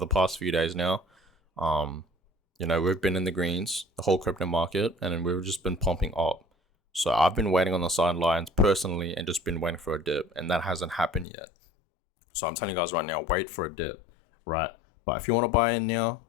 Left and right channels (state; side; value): drops out; right; at 11.2 s